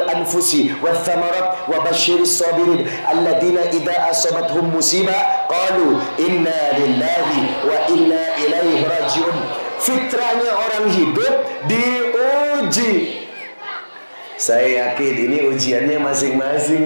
وَالثَّمَرَاتِ وَبَشِّرِ الصَّابِرِينَ الَّذِينَ إِذَا أَصَابَتْهُمْ مُصِيبَةٌ قَالُوا إِنَّا لِلَّهِ وَإِنَّا إِلَيْهِ رَاجِعُونَ. Fitrahnya orang hidup diuji. Saya yakin ini ujiannya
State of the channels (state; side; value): inverted; both; correlation -1.00